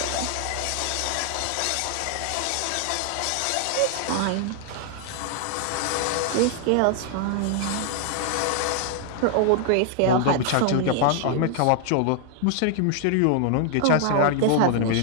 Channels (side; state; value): both; different; correlation 0.00